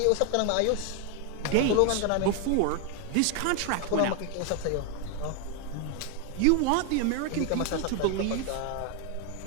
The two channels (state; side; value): different; both; correlation 0.01